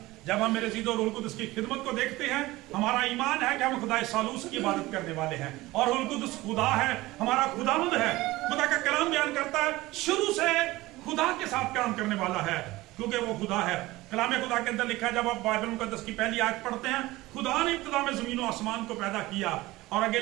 जब हम मेरे ज़ीद और रूहुल कुद्स की खिदमत को देखते हैं, हमारा ईमान है कि हम खुदा सालूस की इबादत करने वाले हैं, और रूहुल कुद्स खुदा है, हमारा खुदावंद है। खुदा का कलाम बयान करता है शुरू से खुदा के साथ काम करने वाला है, क्योंकि वो खुदा है। कलाम खुदा के अंदर लिखा है, जब आप बाइबल मुकद्दस की पहली आयत पढ़ते हैं, खुदा ने इब्तिदा में जमीन और आसमान को पैदा किया, और आगे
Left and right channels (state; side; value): quieter; left; 19.0 dB